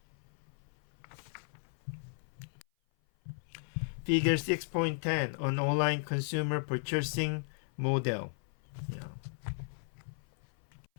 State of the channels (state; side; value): silent; right; 54 dB below the other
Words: Figure 6.10 on online consumer purchasing model. Yeah.